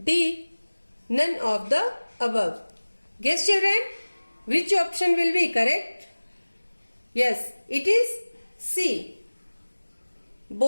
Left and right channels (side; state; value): both; inverted; correlation -1.00